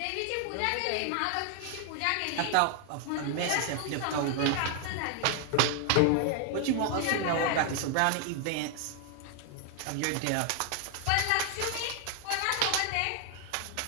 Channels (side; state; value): both; different; correlation 0.00